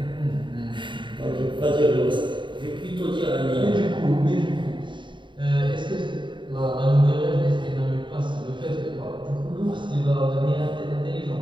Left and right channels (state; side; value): late; left; 0.23 ms